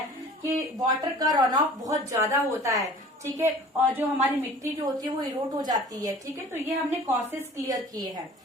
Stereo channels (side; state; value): both; normal; correlation 0.46